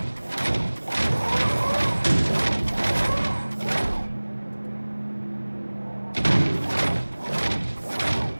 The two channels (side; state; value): both; inverted; correlation -1.00